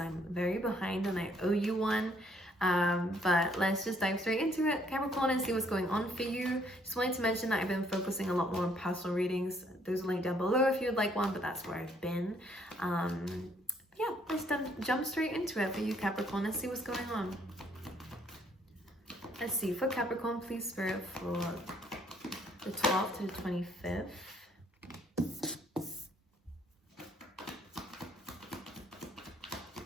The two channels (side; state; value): both; normal; correlation 0.66